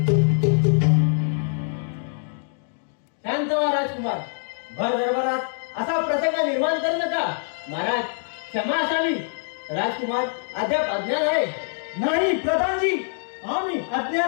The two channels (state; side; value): silent; right; digital silence